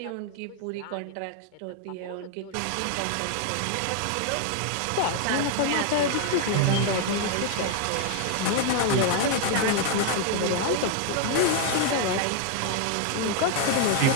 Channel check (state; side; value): different; both; correlation 0.00